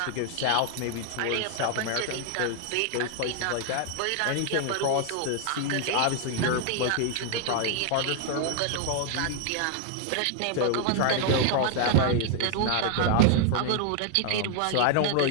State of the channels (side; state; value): both; different; correlation 0.00